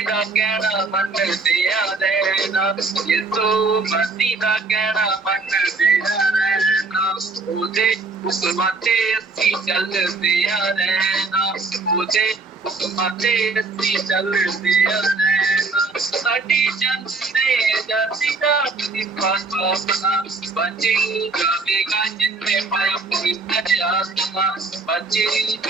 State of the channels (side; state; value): left; quieter; 3.8 dB